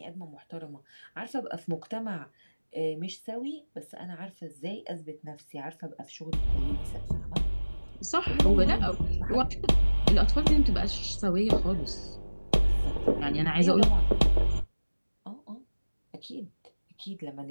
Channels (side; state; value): both; inverted; correlation -1.00